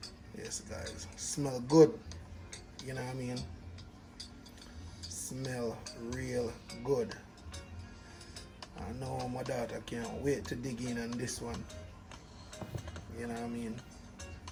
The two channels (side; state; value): both; identical; correlation 1.00